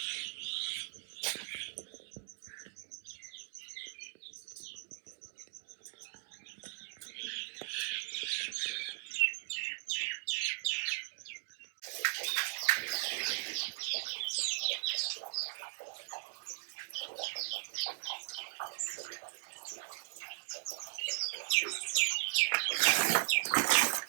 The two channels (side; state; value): left; silent; digital silence